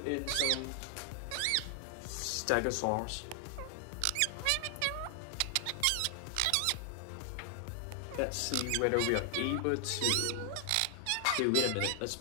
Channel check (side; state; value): both; different; correlation 0.00